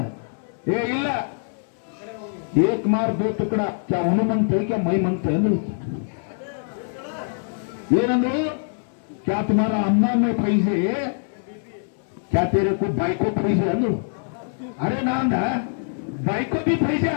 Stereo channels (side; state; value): right; silent; 63 dB below the other